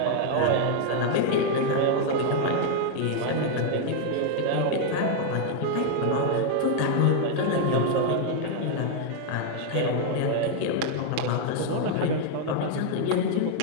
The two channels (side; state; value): both; different; correlation 0.00